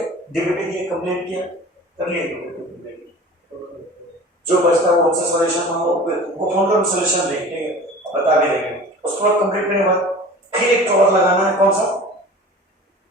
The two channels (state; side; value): normal; both; correlation 0.40